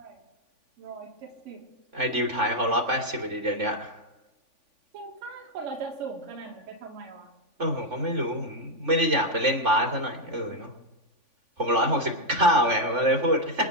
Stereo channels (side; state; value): left; late; 3.5 ms